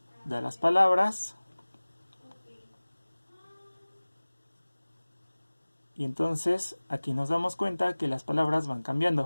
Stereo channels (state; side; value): inverted; both; correlation -1.00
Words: da las palabras, y entonces aquí nos damos cuenta que las palabras van